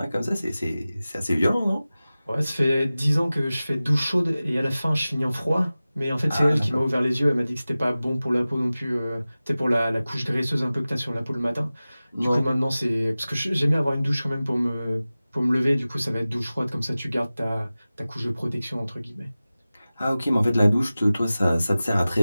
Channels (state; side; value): inverted; both; correlation -0.97